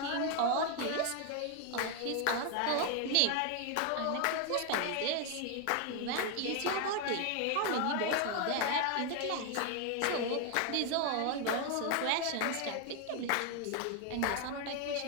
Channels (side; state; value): both; different; correlation 0.01